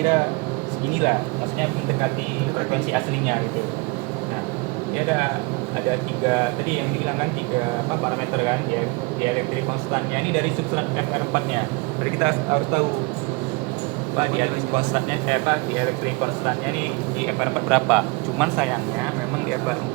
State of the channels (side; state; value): left; quieter; 26.5 dB